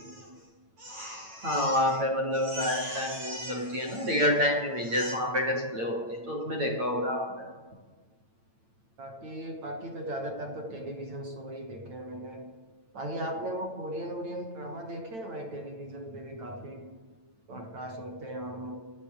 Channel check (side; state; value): left; late; 8.9 ms